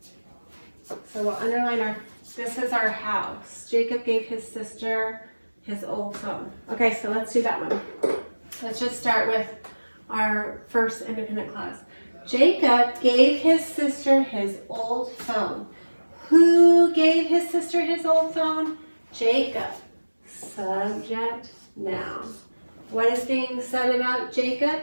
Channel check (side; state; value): both; inverted; correlation -1.00